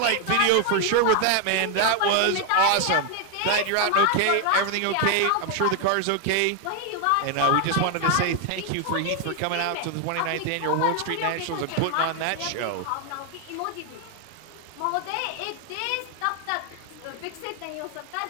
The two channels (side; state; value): both; different; correlation 0.01